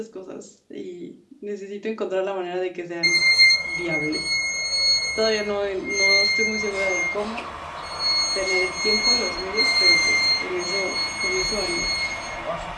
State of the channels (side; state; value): both; identical; correlation 1.00